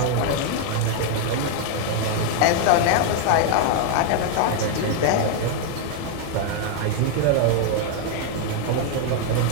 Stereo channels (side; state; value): both; different; correlation 0.00